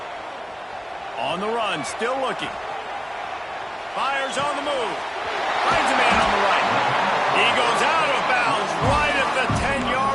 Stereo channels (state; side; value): identical; both; correlation 1.00